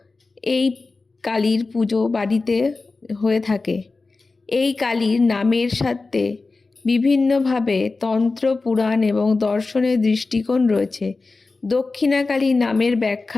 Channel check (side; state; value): right; quieter; 3.8 dB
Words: এই কালীর পুজো বাড়িতে হয়ে থাকে। এই কালীর নামের সাথে বিভিন্নভাবে তন্ত্র, পুরাণ এবং দর্শনের দৃষ্টিকোণ রয়েছে। দক্ষিণা কালী নামের